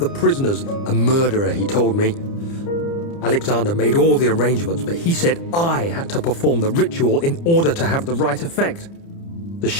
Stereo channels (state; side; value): late; right; 30 ms